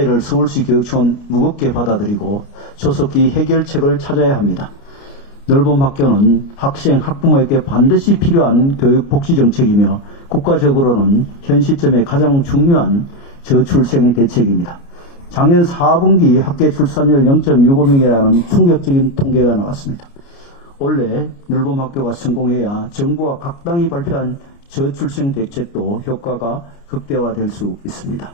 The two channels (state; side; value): late; right; 29 ms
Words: 서울시 교육청은 무겁게 받아들이고 조속히 해결책을 찾아야 합니다. 늘봄 학교는 학생, 학부모에게 반드시 필요한 교육 복지 정책이며 국가적으로는 현 시점에 가장 중요한 저출생 대책입니다. 작년 4분기 학계 출산율 0.65명이라는 충격적인 통계가 나왔습니다. 원래 늘봄 학교가 성공해야 정부와 각 당이 발표한 저출생 대책도 효과가 극대화될 수 있습니다.